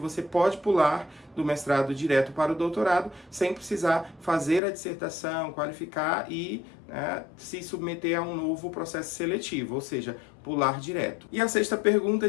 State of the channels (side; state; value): right; drops out; at 4.6 s